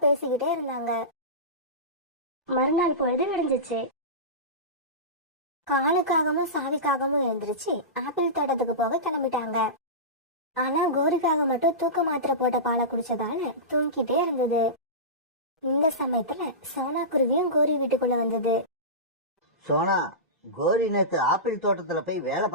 பேசிக்கிட்டே இருந்தாங்க. மறுநாள் பொழுது விடிஞ்சிச்சு. காலுக்காகவும் சாவிக்காகவும் எழுந்திருச்சு ஆப்பிள் தோட்டத்துக்கு போக கிளம்பிட்டாங்க. ஆனா கோரிக்காக மட்டும் தூக்க மாத்திரை போட்ட பாலை குடிச்சதால தூங்கிட்டே இருந்தது. இந்த சமயத்துல சோனா குருவியும் கோரி வீட்டுக்குள்ள வந்தது. சோனா, கோரி நேத்து ஆப்பிள் தோட்டத்துல போய் வேலை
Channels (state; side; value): normal; both; correlation -0.20